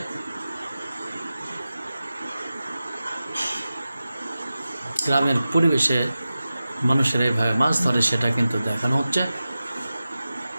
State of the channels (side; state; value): both; inverted; correlation -0.94